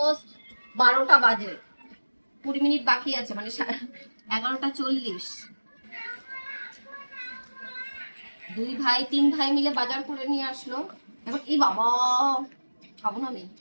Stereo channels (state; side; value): inverted; both; correlation -1.00